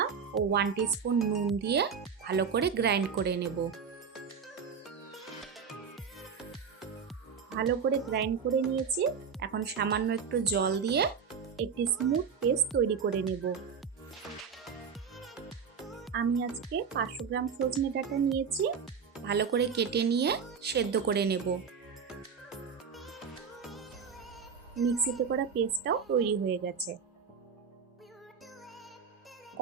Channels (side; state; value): left; quieter; 6.3 dB